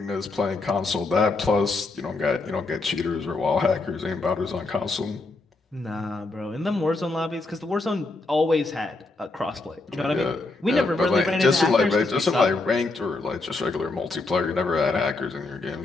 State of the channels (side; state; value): right; quieter; 3.3 dB